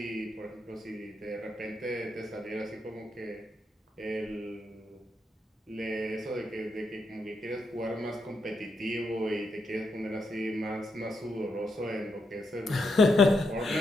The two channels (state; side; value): normal; both; correlation 0.81